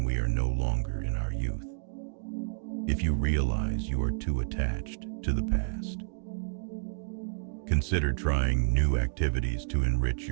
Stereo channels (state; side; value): silent; left; digital silence